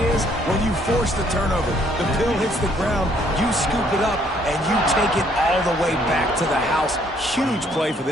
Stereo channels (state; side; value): normal; both; correlation 0.66